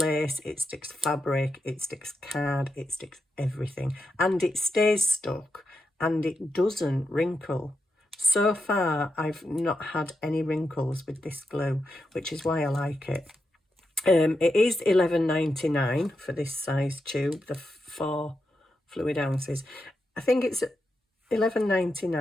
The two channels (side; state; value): both; normal; correlation 0.86